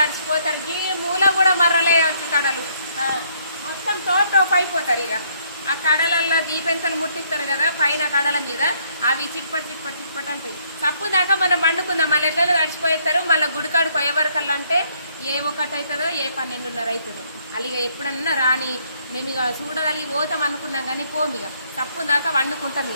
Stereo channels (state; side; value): inverted; both; correlation -0.68